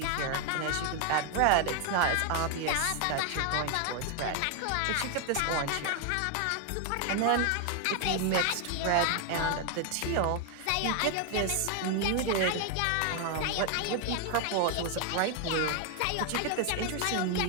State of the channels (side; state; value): both; different; correlation 0.01